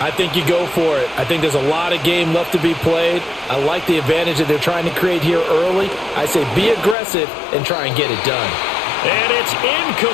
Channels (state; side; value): drops out; right; at 7.0 s